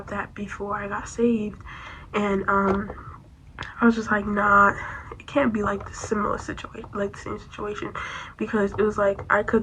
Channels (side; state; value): both; identical; correlation 1.00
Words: that before I got saved, and I was just like, nah, it can't be like the similar situation, like the same situation, because it was like I